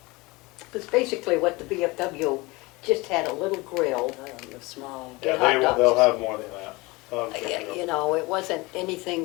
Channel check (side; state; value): right; quieter; 23.7 dB